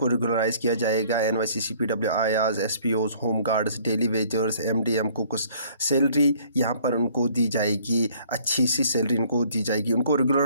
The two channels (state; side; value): inverted; both; correlation -0.58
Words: रेगुलराइज किया जाएगा। NYC CPW आयाज SPOs home guards daily wagers MDM को कुछ सैलरी यहाँ पर उनको दी जाएगी, अच्छी सी सैलरी इनको दी जाएगी। उनको